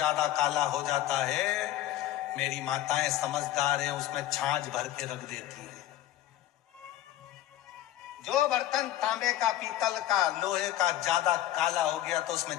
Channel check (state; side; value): quieter; right; 13.5 dB